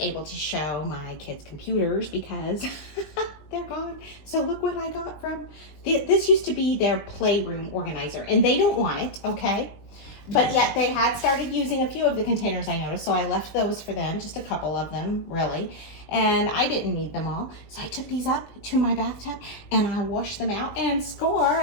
able to show my kids' computers because they're gone. So look what I got from, this used to be their playroom organizer, and they don't want it, okay? But yet they had started using a few of the containers, I noticed, so I left those for them, just a couple of them, really. And I didn't need them all. So I took these up to my bathtub and I washed them out and score.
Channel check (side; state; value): right; late; 20 ms